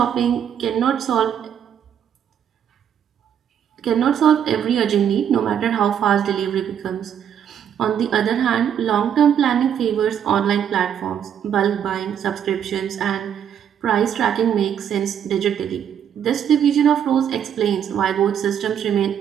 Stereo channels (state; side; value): quieter; left; 8.9 dB